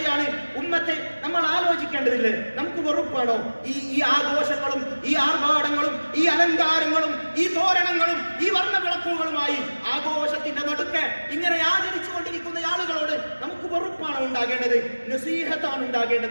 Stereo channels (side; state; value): both; inverted; correlation -1.00